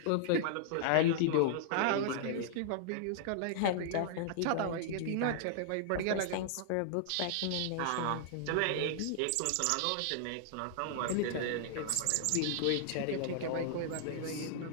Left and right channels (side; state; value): both; different; correlation -0.01